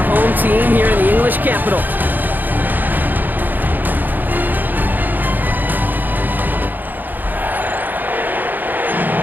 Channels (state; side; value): late; left; 0.087 ms